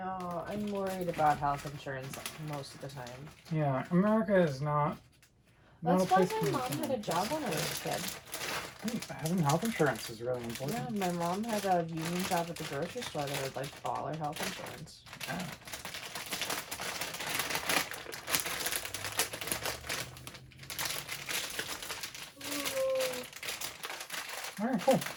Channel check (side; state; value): both; identical; correlation 1.00